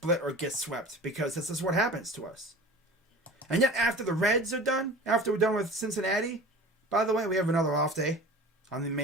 or get swept because this is what happens to us. And yet, after the Reds are done, after we're done with Cincinnati, by the way, we have another off day on the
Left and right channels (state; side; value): normal; both; correlation 0.38